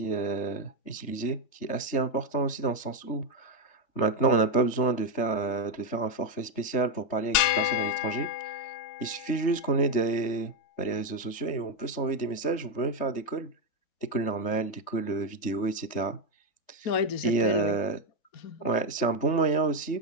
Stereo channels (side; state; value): right; late; 3.3 ms